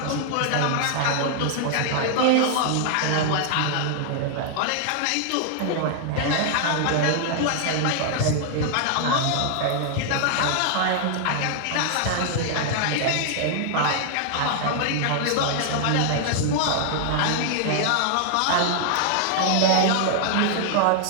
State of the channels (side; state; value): both; different; correlation -0.01